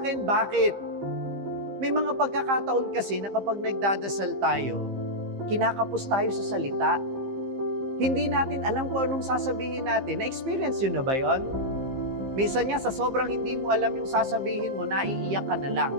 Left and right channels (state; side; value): late; left; 15 ms